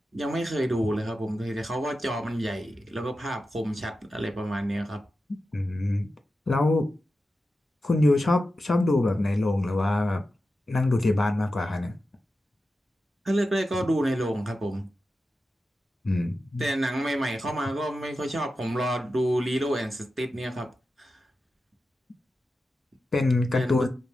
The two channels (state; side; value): normal; both; correlation 0.91